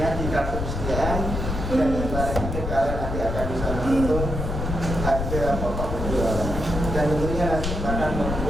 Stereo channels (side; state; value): left; noise; rumble, 3 dB below the sound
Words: di kartu persediaan, dan yang terakhir kalian nanti akan bisa menghitung harga pokok penjualan, dan tentunya nanti akan